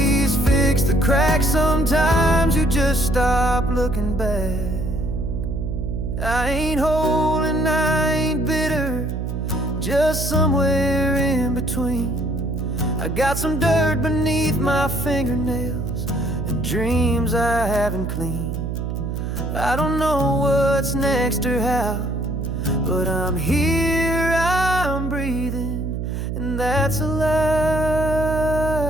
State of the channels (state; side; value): noise; right; hum, 3 dB below the sound